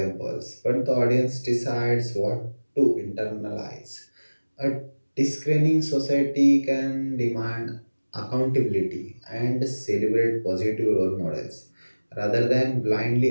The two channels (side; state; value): both; inverted; correlation -1.00